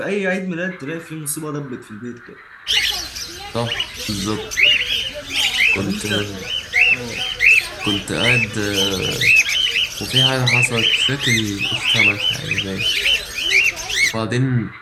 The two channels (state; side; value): identical; both; correlation 1.00